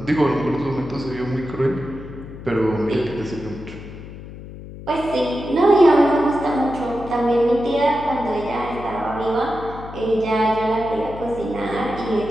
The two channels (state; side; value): noise; left; hum, 13 dB below the sound